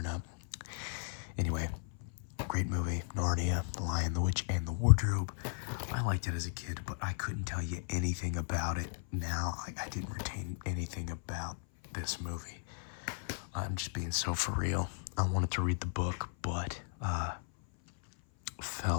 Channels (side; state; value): right; silent; 54 dB below the other